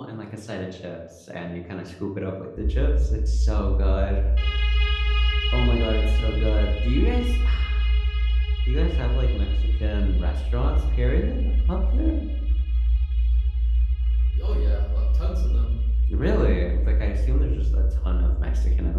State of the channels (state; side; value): identical; both; correlation 1.00